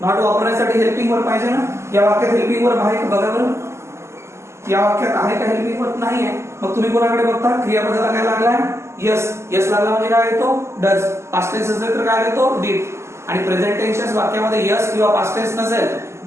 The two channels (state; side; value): late; left; 0.13 ms